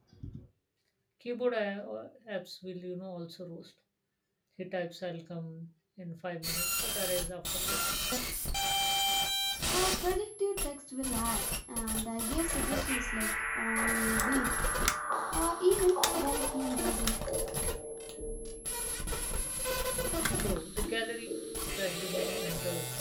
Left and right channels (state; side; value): identical; both; correlation 1.00